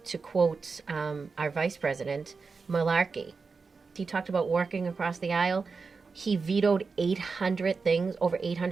quote our vice president, malarkey. He talked about working across the aisle. He vetoed 800 things, over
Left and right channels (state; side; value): quieter; left; 4.7 dB